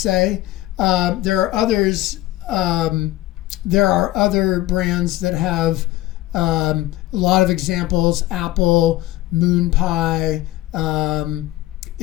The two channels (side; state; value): right; quieter; 16.7 dB